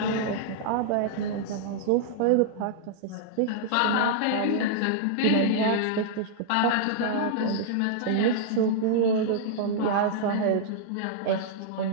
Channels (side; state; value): both; different; correlation -0.02